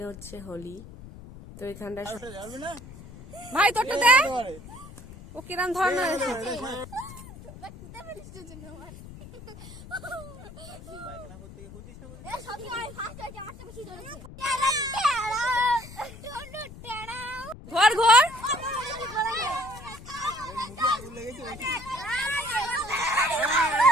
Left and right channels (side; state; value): left; noise; rumble, 16 dB below the sound